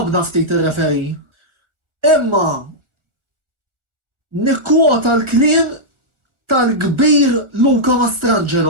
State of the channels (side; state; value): left; late; 1.4 ms